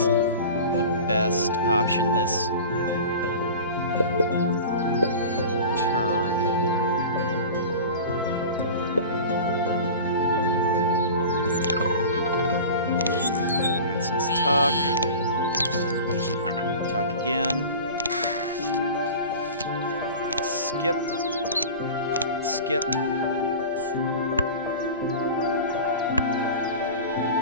the best option this turn. Alright, so let's tuck. Tuck again. Skip. Skip.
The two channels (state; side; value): inverted; both; correlation -0.35